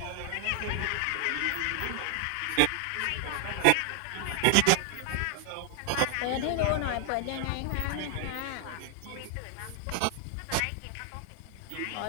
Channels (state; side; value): different; both; correlation 0.00